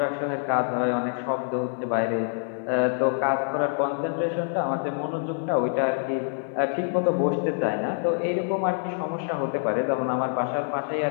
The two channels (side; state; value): right; silent; 57 dB below the other